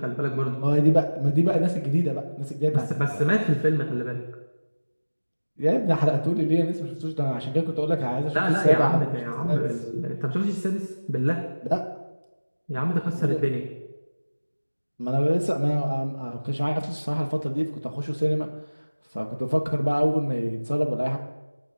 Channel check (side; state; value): both; inverted; correlation -1.00